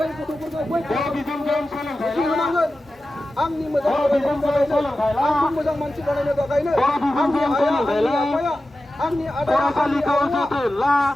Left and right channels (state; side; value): normal; both; correlation 0.94